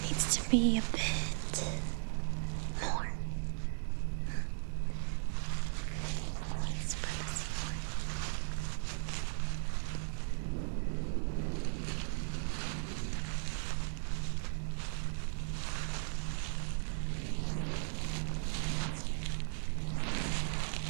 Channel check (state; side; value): silent; left; digital silence